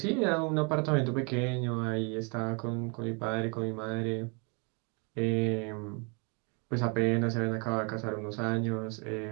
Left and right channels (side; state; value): left; quieter; 34.0 dB